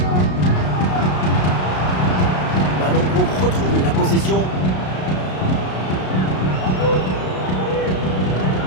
Ballon pour retrouver la possession.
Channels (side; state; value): right; late; 33 ms